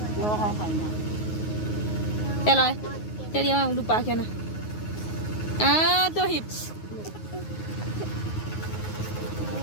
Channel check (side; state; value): right; late; 9.5 ms